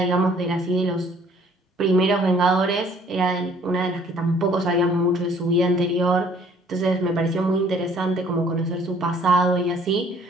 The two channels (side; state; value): both; normal; correlation 0.58